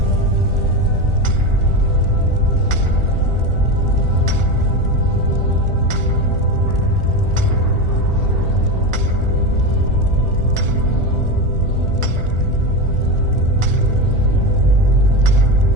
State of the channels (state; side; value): late; left; 1.4 ms